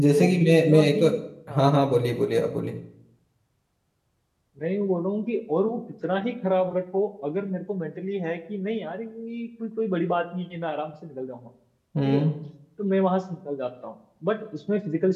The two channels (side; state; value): both; identical; correlation 1.00